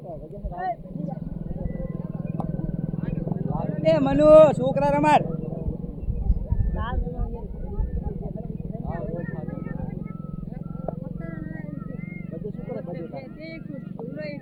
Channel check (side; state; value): both; identical; correlation 1.00